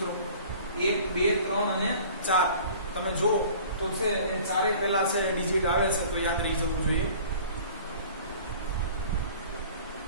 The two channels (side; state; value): both; inverted; correlation -0.47